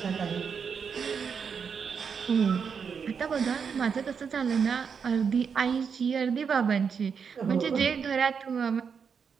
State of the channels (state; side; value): quieter; left; 6.4 dB